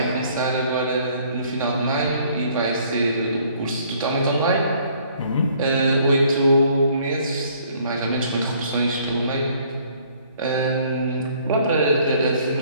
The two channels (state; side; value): inverted; both; correlation -0.60